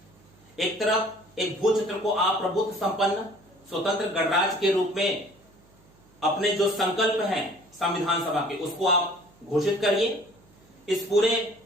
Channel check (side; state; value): right; noise; hum, 29 dB below the sound